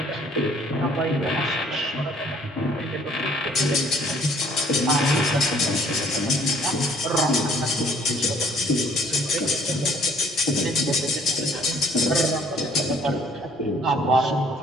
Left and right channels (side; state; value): both; normal; correlation 0.60